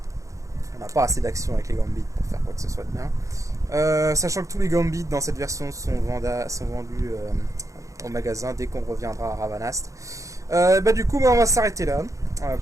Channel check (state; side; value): late; left; 0.15 ms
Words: on n'a pas assez d'action avec les gambits pour faire quoi que ce soit de bien. Sachant que tous les gambits dans cette version sont vendus au magasin dès qu'on reviendra à Ravanast. Du coup, on va s'arrêter là